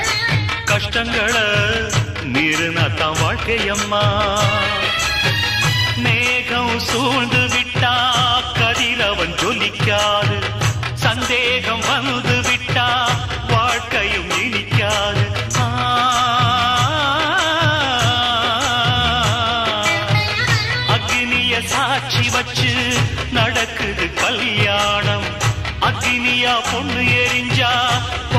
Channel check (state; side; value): identical; both; correlation 1.00